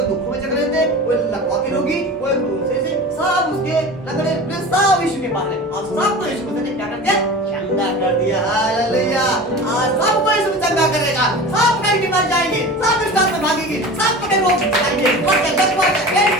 दुखों में जकड़े थे, कोई लकवा के रोगी, कोई भूसे से, सब उसके लगड़े सब यीशु के पास है और सबको यीशु मसीह ने क्या कर दिया? चंगा कर दिया। हालेलुया। आज सबको यीशु चंगा करेगा, सब कहीं बीमार जाएंगे, सब दुष्ट आत्मा भागेंगे, सब कहीं रोग जाएंगे,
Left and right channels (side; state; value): both; normal; correlation 0.35